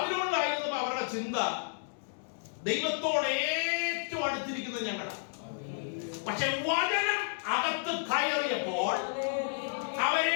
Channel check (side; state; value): right; silent; digital silence